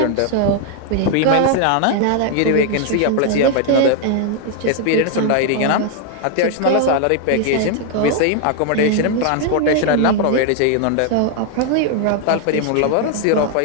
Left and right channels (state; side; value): different; both; correlation 0.00